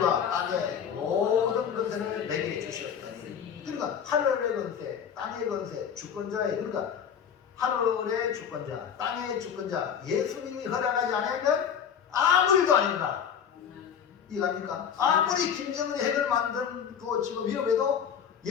땅의 모든 근세를 내게 주셨다니. 그러니까 하늘의 근세, 땅의 근세, 주권자의 그러니까 하늘의 주권자, 땅의 주권자 예수님이 허락하지 않으면 아무 일도 아닙니다. 이해갑니까? 아무리 김정은이 핵을 만들고 지금 위협해도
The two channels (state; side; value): quieter; right; 7.9 dB